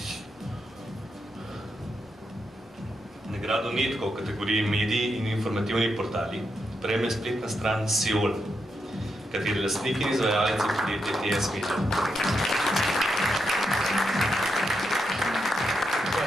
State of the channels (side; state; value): both; normal; correlation 0.83